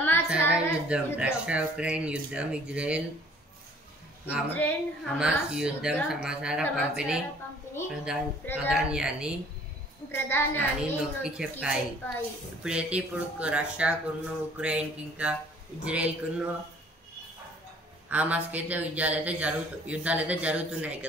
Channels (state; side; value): normal; both; correlation 0.55